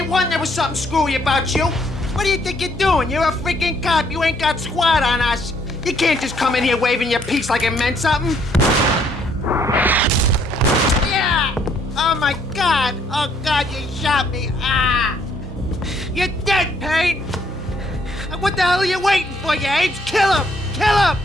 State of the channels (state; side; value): normal; both; correlation 0.67